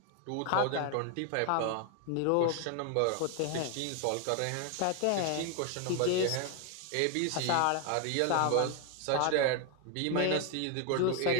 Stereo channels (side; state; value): both; different; correlation 0.01